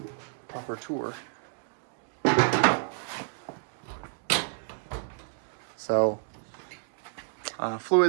proper tour. So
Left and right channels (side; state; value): left; silent; digital silence